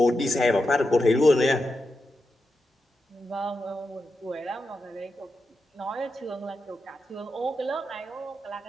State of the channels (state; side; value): normal; both; correlation 0.88